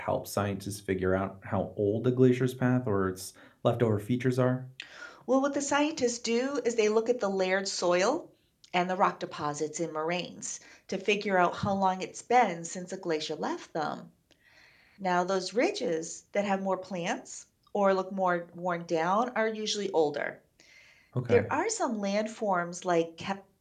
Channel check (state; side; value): identical; both; correlation 1.00